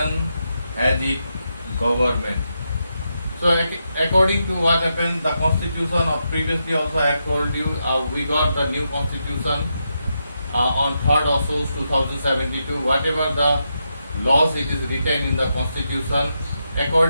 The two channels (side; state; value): both; inverted; correlation -0.84